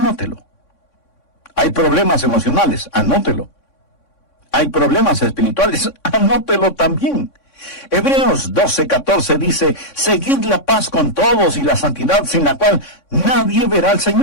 Hay problemas emocionales, anótelo. Hay problemas espirituales, anótelo también. Hebreos 12:14 dice, seguid la paz con todos y la santidad sin la cual nadie verá al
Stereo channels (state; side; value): late; right; 3.6 ms